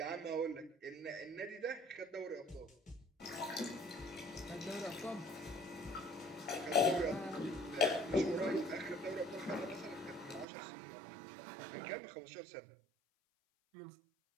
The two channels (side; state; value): left; drops out; at 10.5 s